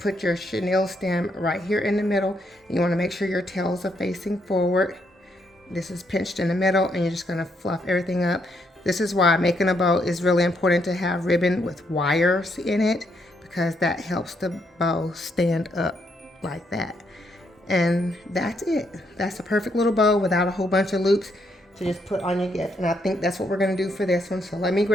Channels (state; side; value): normal; both; correlation 0.75